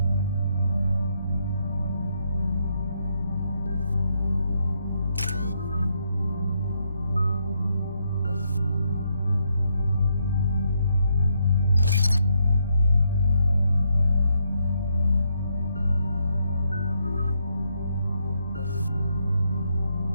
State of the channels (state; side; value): inverted; both; correlation -0.77